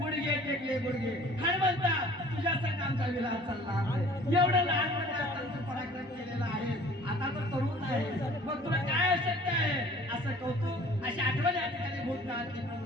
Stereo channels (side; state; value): both; normal; correlation 0.50